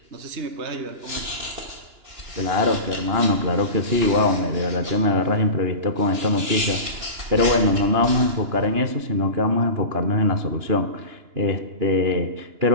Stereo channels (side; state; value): left; late; 2.9 ms